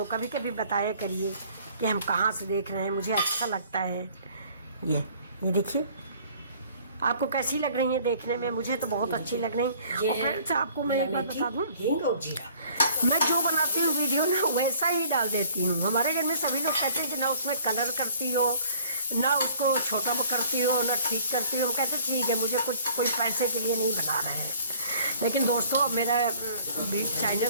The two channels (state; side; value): inverted; both; correlation -0.54